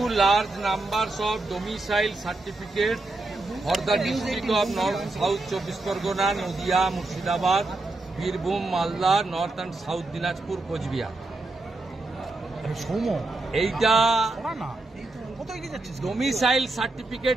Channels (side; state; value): left; quieter; 3.0 dB